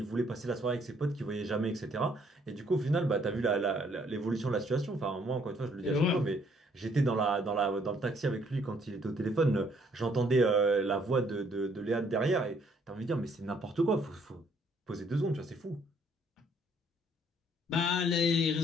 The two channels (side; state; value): both; normal; correlation 0.65